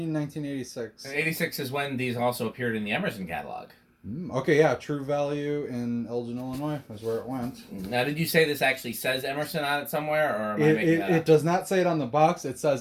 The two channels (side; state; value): both; identical; correlation 1.00